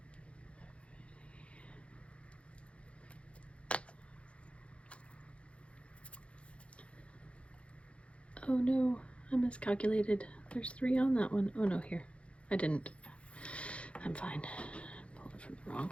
go. Oh no, I miscalculated. There's 3 on that one. Oh no, here. I didn't. I'm fine. Pulled it from the wrong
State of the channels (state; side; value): late; right; 0.060 ms